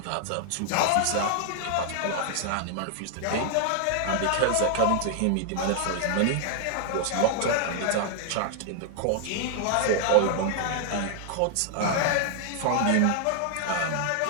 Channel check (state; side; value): different; both; correlation 0.00